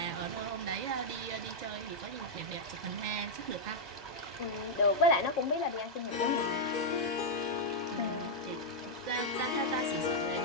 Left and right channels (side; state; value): right; late; 1.2 ms